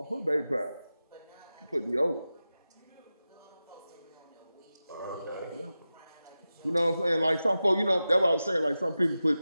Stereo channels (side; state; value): both; inverted; correlation -0.93